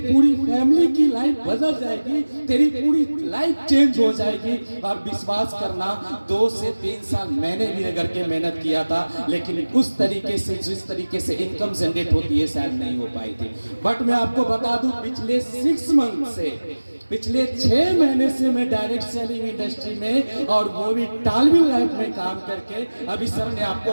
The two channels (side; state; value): both; inverted; correlation -1.00